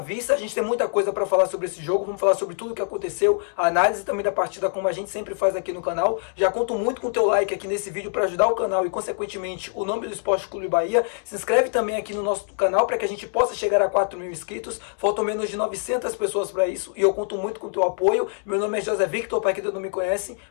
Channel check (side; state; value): right; silent; digital silence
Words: A gente tem muita coisa para falar sobre esse jogo, vamos falar sobre tudo o que aconteceu, a análise também da partida, como a gente sempre faz aqui no canal. Já conto muito com o teu like aqui nesse vídeo para ajudar o canal e, consequentemente, o nome do Esporte Clube Bahia. Se inscreve também aqui no nosso canal para que a gente possa chegar a 4.000 inscritos, faltam menos de 900 pessoas para isso e eu conto muito com o teu apoio. Meu nome é José Victor, para quem ainda não me conhece,